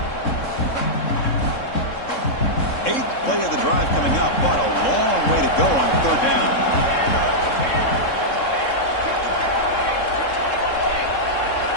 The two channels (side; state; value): right; late; 3.7 ms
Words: Eighth play of the drive coming up, but a long way to go on third down.